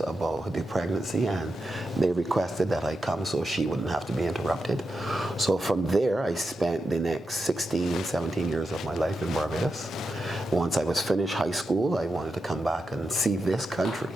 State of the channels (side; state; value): both; normal; correlation 0.88